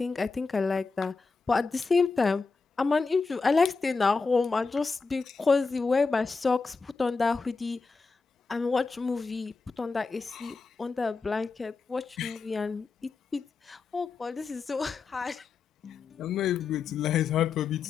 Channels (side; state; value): right; quieter; 4.5 dB